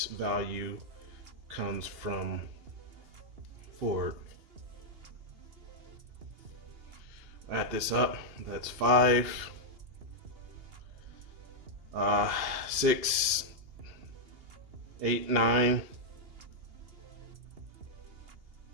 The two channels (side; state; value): left; late; 2.8 ms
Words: value comes from Ford. Add this up, that's 5, 6, 8, 9,